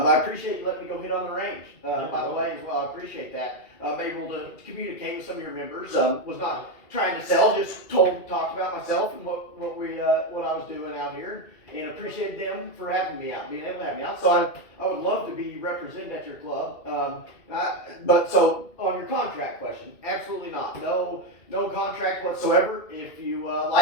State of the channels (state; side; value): late; right; 2.1 ms